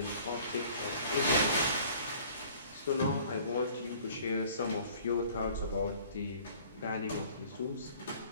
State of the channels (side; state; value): both; inverted; correlation -0.52